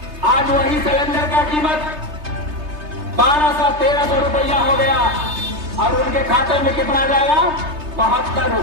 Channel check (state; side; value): late; left; 3.3 ms